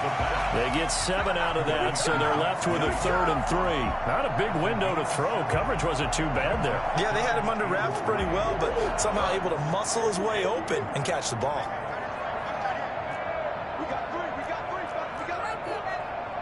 They get 7 out of that, so they're left with a 3rd and 3. Not a big window to throw. Coverage wasn't too bad there. Yeah, they had him under wraps pretty well, but somehow able to muscle his way open and catch the ball.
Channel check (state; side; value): identical; both; correlation 1.00